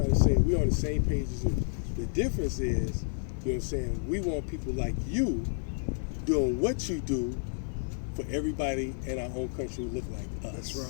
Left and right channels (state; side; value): silent; right; digital silence